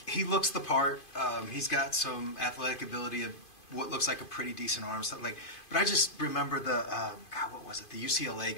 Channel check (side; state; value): right; late; 2.5 ms